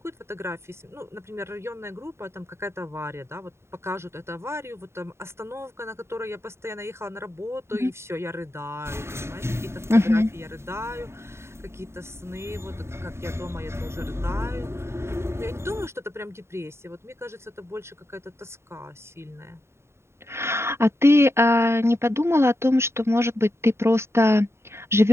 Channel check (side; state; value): left; late; 0.13 ms